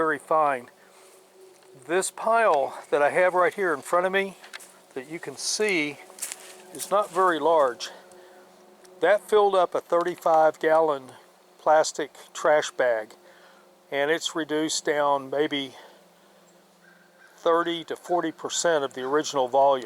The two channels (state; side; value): identical; both; correlation 1.00